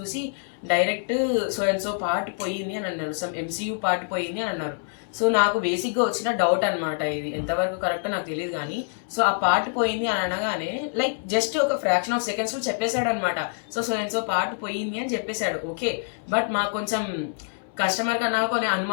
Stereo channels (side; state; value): right; silent; 61 dB below the other